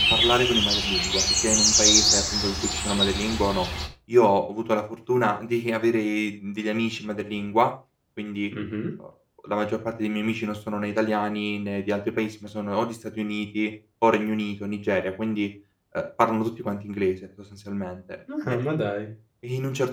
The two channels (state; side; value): identical; both; correlation 1.00